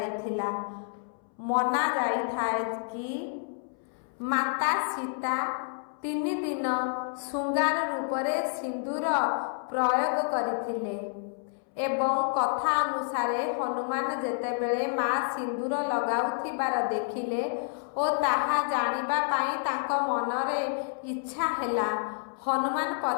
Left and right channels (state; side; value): silent; right; 58 dB below the other